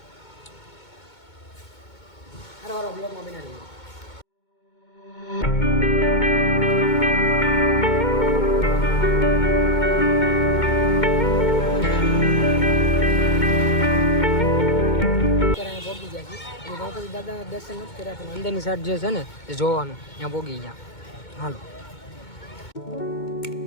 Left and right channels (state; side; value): late; right; 2.2 ms